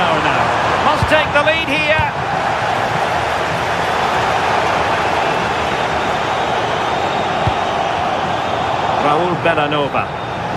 now. Must take the lead here. Raul Bellanova.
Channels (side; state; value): both; identical; correlation 1.00